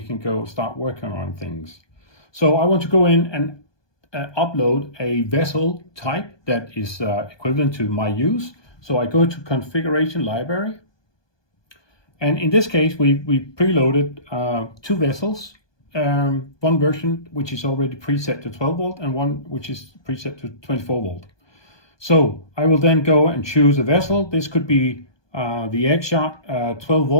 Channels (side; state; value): right; late; 1.2 ms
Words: can go start working on things. So I want to go in and upload a vessel type that is equivalent to my use. So I go to configuration library, and in this case we preloaded 2 vessels, one version which is already preset to 12 volt and one which is preset to 24 volt. So I will then go and choose a vessel. This could be the Axiom 12